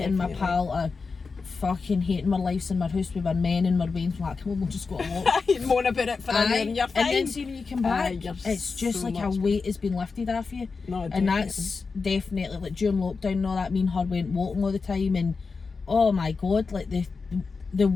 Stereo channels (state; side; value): quieter; right; 4.6 dB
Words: my pal are fucking hating our lives in our house with our men and our veins, we're like, come on, we'll just go to walk. Moan about it for a year and you're fine. And then see when you come back, it's just so like a weight has been lifted off you. No, and that's definitely, like, during lockdown and all that, me and her went walking all the time, and oh my god, like the